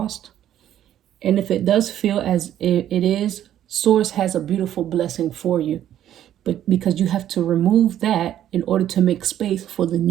And if it does feel as it is, source has a beautiful blessing for you. But because you have to remove that in order to make space for the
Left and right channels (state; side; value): quieter; left; 11.4 dB